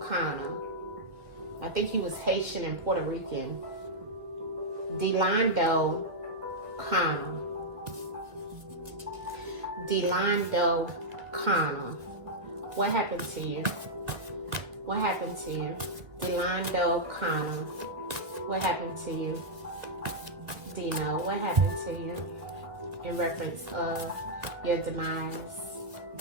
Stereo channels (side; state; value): left; late; 2.0 ms